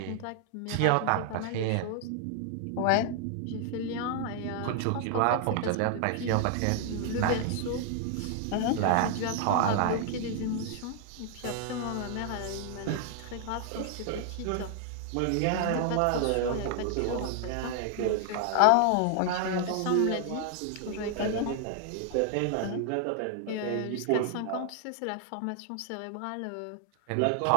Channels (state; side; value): different; both; correlation 0.00